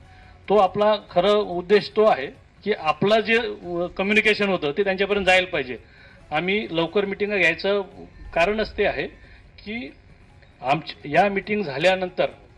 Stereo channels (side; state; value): both; identical; correlation 1.00